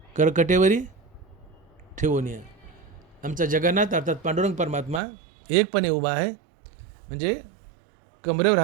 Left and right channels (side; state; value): left; drops out; at 5.0 s